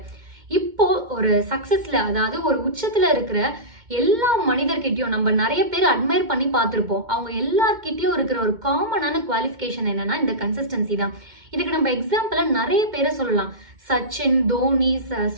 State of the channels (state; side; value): late; left; 2.1 ms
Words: இப்போ ஒரு சக்சஸ்ல, அதாவது ஒரு உச்சத்துல இருக்கிற எல்லா மனிதர்கிட்டயும் நம்ம நிறைய பேர் அட்மையர் பண்ணி பார்த்திருப்போம். அவங்க எல்லார்கிட்டயும் இருக்கிற ஒரு காமனான குவாலிஃபிகேஷன் என்னன்னா இந்த கன்சிஸ்டன்சி தான். இதுக்கு நம்ம எக்ஸாம்பிளா நிறைய பேரை சொல்லலாம். சச்சின், தோனி,